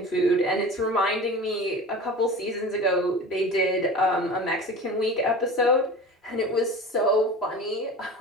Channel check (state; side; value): normal; both; correlation 0.35